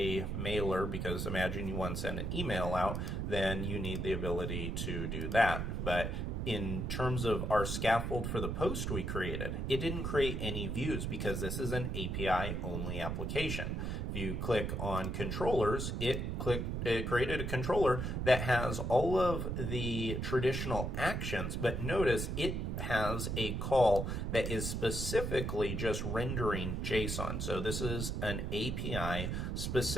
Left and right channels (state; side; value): noise; right; rumble, 2 dB below the sound